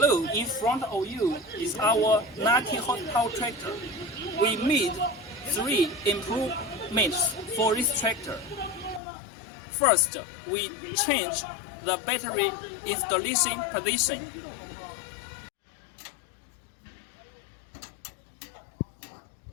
in front of you is our 90 horsepower tractor. We made 3 improvements for this tractor. First, we changed the battery installation position.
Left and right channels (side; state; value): right; drops out; at 9.0 s